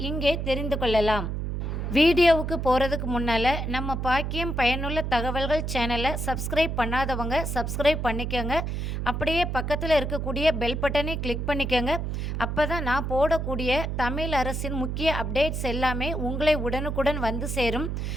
இங்கே தெரிந்து கொள்ளலாம். வீடியோவுக்கு போகிறதுக்கு முன்னால் நம்ம பாக்கியம் பயனுள்ள தகவல்கள் சேனலை சப்ஸ்கிரைப் பண்ணாதவங்க சப்ஸ்கிரைப் பண்ணிக்கோங்க. அப்படியே பக்கத்தில் இருக்கக்கூடிய பெல் பட்டனை கிளிக் பண்ணிக்கோங்க. அப்போ தான் நான் போடக்கூடிய தமிழ் அரசின் முக்கிய அப்டேட்ஸ் எல்லாமே உங்களை உடனுக்குடன் வந்து சேரும்.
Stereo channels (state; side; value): noise; right; hum, 2 dB below the sound